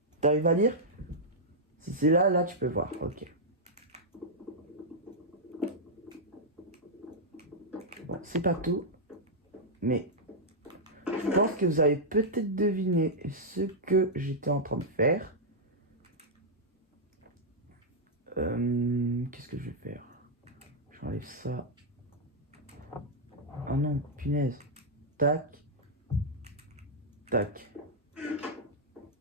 T'arrives à lire? Si c'est là, là tu peux voir, ok. Bon, c'est pas tout, mais je pense que vous avez peut-être deviné ce que j'étais en train de faire. Qu'est-ce que je vais faire? J'enlève ça. Ah non, punaise. Tac. Tac.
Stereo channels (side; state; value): both; normal; correlation -0.06